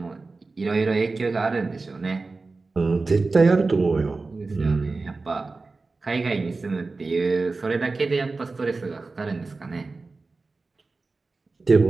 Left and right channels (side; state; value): left; quieter; 3.8 dB